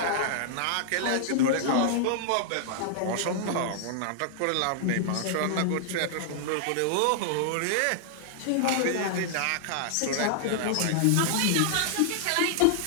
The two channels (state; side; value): different; both; correlation -0.01